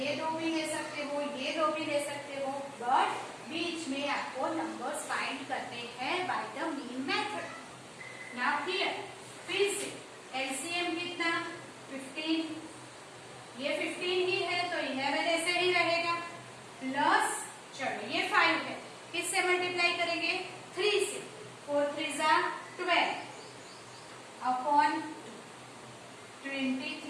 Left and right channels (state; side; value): identical; both; correlation 1.00